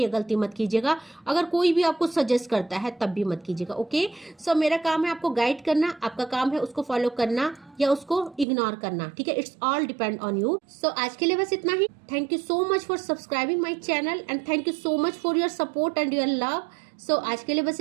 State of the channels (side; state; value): left; drops out; at 8.5 s